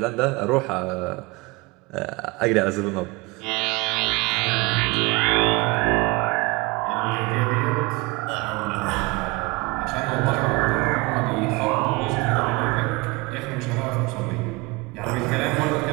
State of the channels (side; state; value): left; quieter; 25.8 dB